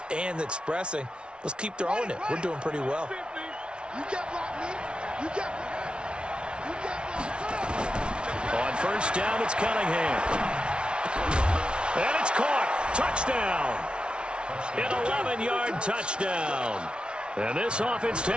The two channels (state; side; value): late; left; 0.057 ms